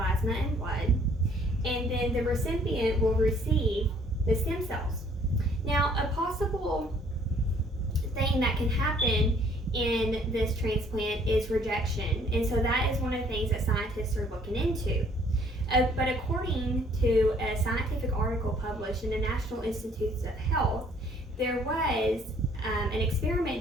and blood. And then the recipient will receive the stem cells. Now, a possible thing that can happen in this transplant is rejection, and so that is one of the things that scientists are looking into. But according to a scientific article published in the National Institutes of Health, there was an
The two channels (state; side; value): normal; both; correlation 0.60